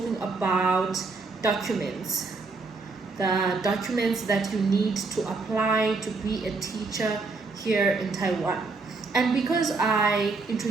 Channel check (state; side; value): quieter; left; 4.0 dB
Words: about documents, the documents that you need to apply to be a teacher here in Taiwan. And because I